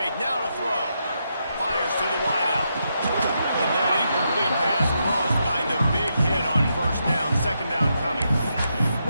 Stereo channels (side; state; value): both; inverted; correlation -0.82